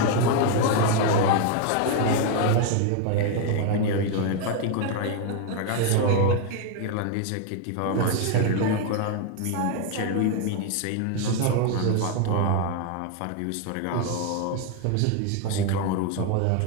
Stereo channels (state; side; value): different; both; correlation 0.01